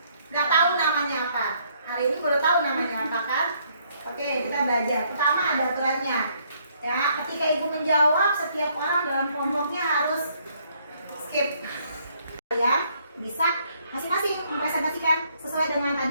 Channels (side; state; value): both; inverted; correlation -0.68